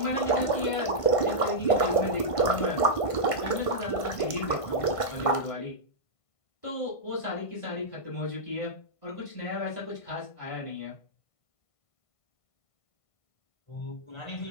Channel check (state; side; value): late; right; 1.5 ms